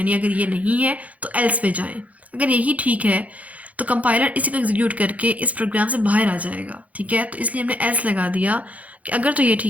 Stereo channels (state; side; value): late; left; 0.070 ms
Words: अगर ये नहीं है तो एल्स पे जाएं। अगर यही ठीक है तो कंपाइलर इसी को एग्जीक्यूट करके इस प्रोग्राम से बाहर आ जाएगा, ठीक है। तो इसलिए हमने एल्स लगा दिया कि अगर तो ये